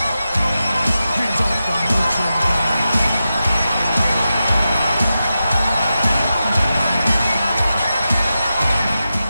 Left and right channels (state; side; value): inverted; both; correlation -0.91